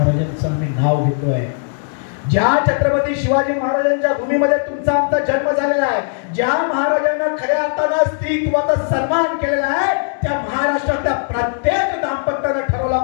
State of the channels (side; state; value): right; silent; digital silence